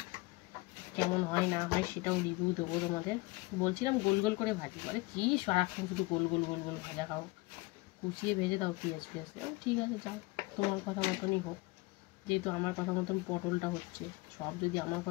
কেমন হয় না হয় সেটাও রিভিউ দেবো তোমাদের। বলছিলাম গোল গোল করে ভাজি, বলে কি সারাক্ষণ শুধু গোল গোল গোল গোল ভাজা খাও, কুচিয়ে ভেজে দাও পেঁয়াজ ফিয়াজ। ঠিক আছে যাও, তোমার কথা মতনই হোক, যেহেতু আমার কথা মতন পটলটা হচ্ছে। সব যদি আমার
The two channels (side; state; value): right; quieter; 23.0 dB